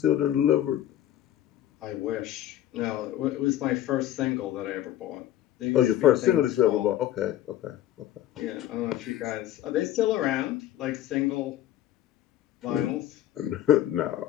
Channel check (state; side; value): quieter; right; 12.7 dB